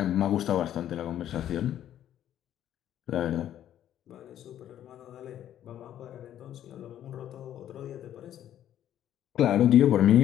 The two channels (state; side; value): quieter; right; 11.2 dB